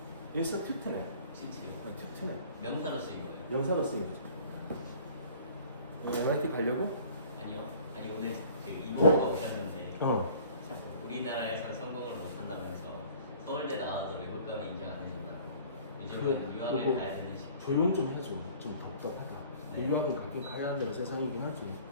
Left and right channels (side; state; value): both; inverted; correlation -0.50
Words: institute네. 튜트네. 명사로 쓰인 거예요. 명사로 쓰인 거죠. MIT 가려고? 아니요. 아니 오늘 그 이모가 오셨는데 어. 우리나라에서 성공을 못한다고 해서 서울대 나와도 외국 가면 인정 안 해준다고. 요즘은 그래, 유학을 그거 가야 되는 시기. 조용 좀 해줘. 좀 답답하다. 네. 유학은 가긴 가야 하는 세상이긴 하지.